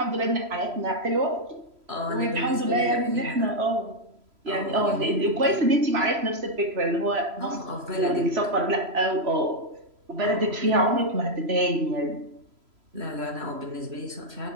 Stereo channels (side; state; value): left; late; 3.0 ms